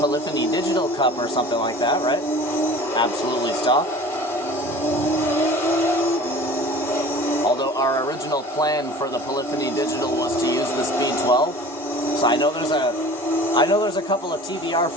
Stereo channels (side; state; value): both; normal; correlation 0.43